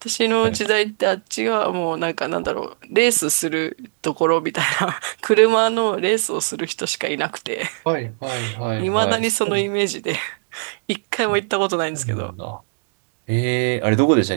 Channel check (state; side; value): silent; left; digital silence